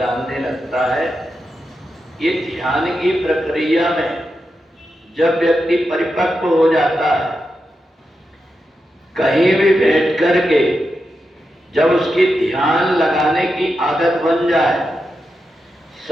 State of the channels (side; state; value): both; normal; correlation 0.88